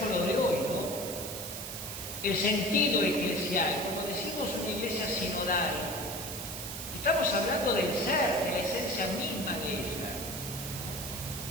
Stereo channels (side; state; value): right; noise; hiss, 7 dB below the sound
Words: lo de hoy, ¿no? El sentido eclesial, como decimos, una iglesia sinodal. Estamos hablando del ser, de la esencia misma de ella.